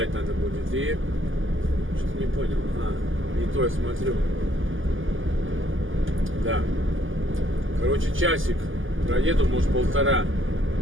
надо будет. И что-то не понял. Не то я смотрю. Да. Короче, часик проеду, может, 1,5.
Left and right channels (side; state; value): left; late; 0.58 ms